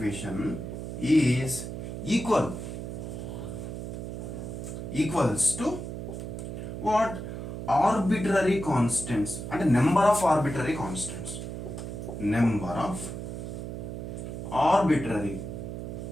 is equals to what? Arbitrary constants, అంటే number of arbitrary constants,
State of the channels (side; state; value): right; noise; hum, 7 dB below the sound